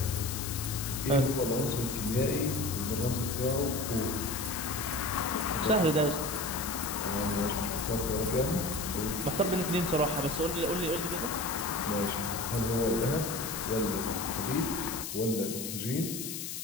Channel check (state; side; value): noise; left; hiss, 6 dB below the sound